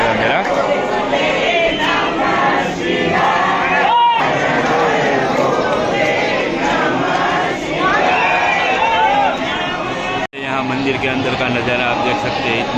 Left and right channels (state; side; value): identical; both; correlation 1.00